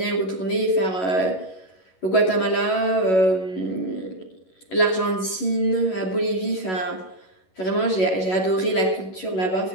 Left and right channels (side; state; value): right; late; 11 ms